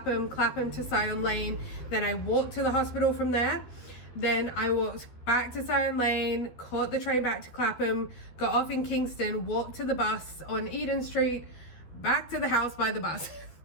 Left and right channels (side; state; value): right; late; 13 ms